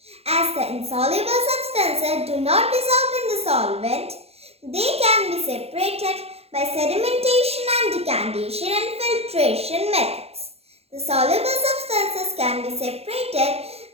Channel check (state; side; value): late; left; 0.29 ms